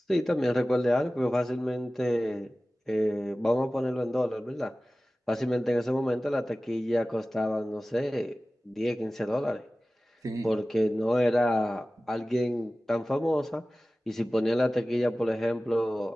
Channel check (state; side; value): normal; both; correlation 0.96